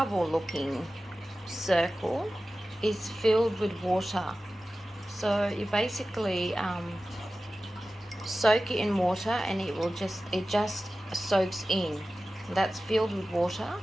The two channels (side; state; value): both; normal; correlation 0.95